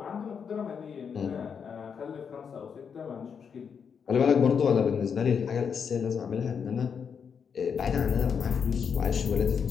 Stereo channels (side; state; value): right; quieter; 6.7 dB